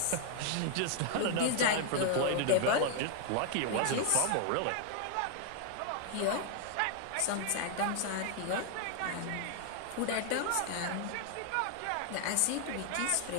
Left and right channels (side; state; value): both; different; correlation 0.00